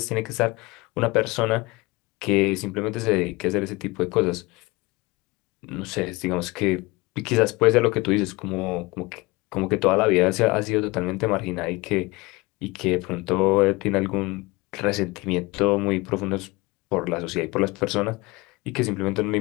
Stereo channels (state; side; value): quieter; right; 23.2 dB